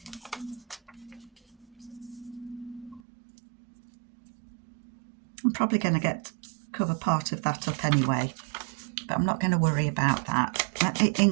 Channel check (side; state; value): left; drops out; at 3.0 s